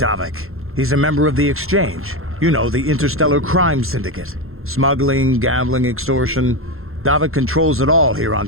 He's a member of the Exchange. You know, the interstellar crime syndicate. Smuggling, gambling, extortion. Davik controls it all here on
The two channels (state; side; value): late; left; 0.61 ms